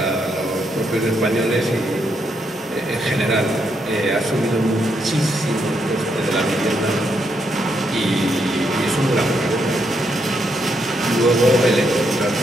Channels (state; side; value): normal; both; correlation 0.78